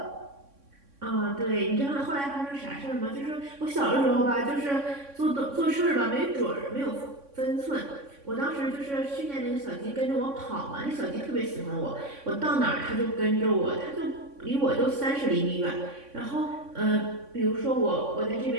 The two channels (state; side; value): late; left; 3.6 ms